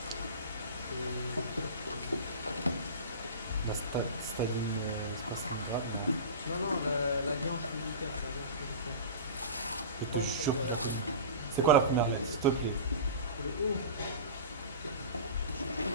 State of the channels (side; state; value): both; inverted; correlation -0.32